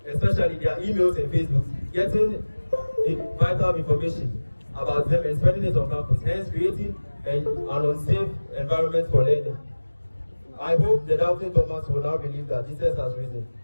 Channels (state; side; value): inverted; both; correlation -1.00